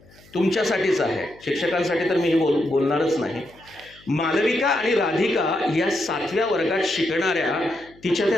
तुमच्यासाठीच आहे, शिक्षकांसाठी तर मी बोलणारच नाही. मालविका आणि राधिका या 7व्या वर्गात शिकणाऱ्या तिच्या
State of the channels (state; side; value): noise; left; hum, 27 dB below the sound